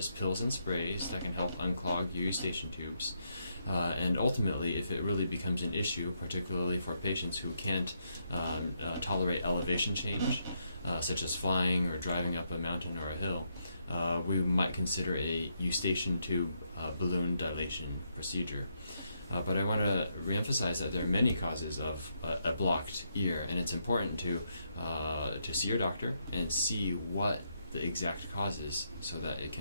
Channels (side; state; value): both; inverted; correlation -0.78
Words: pills and sprays, that can help unclog your eustachian tubes. And ultimately, if it really becomes an issue, particularly for patients who can't tolerate elevation change, such as flying or driving up a mountain or a hill, we might consider a eustachian tube balloon dilation procedure. But I want to reemphasize that there are many causes of a blocked ear, and it's important to see your doctor and see what the exact cause is so that it